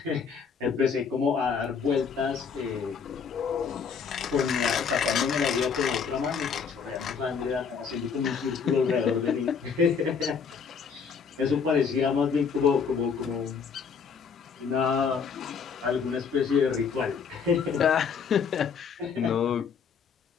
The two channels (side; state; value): right; quieter; 6.2 dB